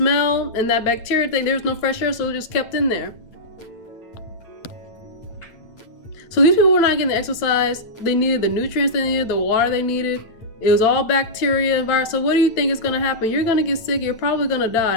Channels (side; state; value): right; late; 8.9 ms